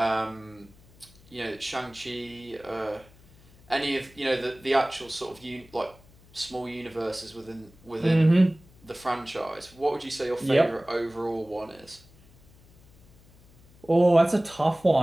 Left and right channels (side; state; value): left; noise; hum, 26 dB below the sound